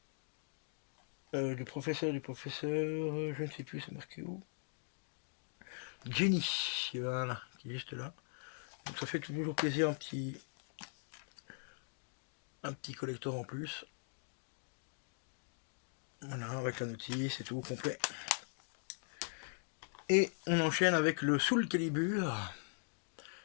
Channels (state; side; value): silent; right; digital silence